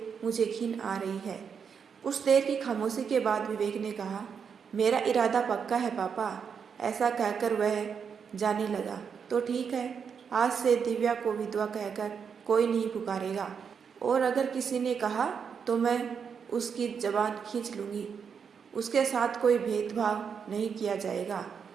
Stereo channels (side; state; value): left; quieter; 6.7 dB